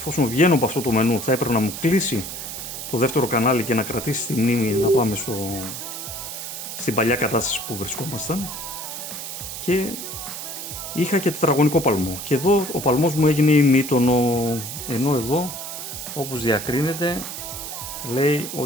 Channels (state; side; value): noise; right; hiss, 8 dB below the sound